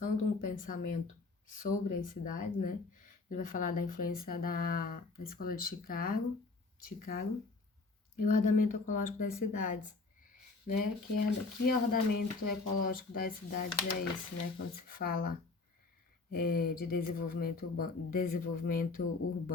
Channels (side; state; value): right; quieter; 3.8 dB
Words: de um pensamento sobre as cidades, né? Ele vai falar da influência da escola de Chicago e o ordenamento ecológico das cidades, né? Que ordenamento ecológico das cidades é esse, né? Quando se fala de desenvolvimento